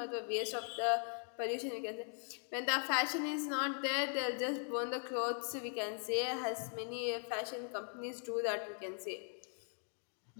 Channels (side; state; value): right; silent; 51 dB below the other